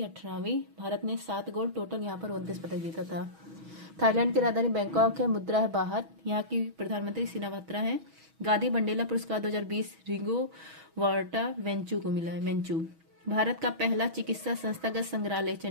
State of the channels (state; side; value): late; left; 6.2 ms